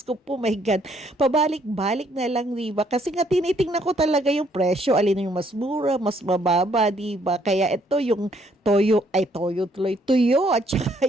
po, my God. Pabalik-balik na lang, diba? Kasi nga tinitingnan ko talaga yung presyo. Alin yung mas mura, mas mababa, diba? Kaya ito yung tuyo. At saka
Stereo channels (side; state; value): both; normal; correlation 0.67